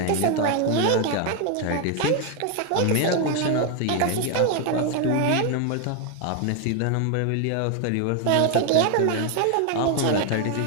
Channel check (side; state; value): both; different; correlation 0.01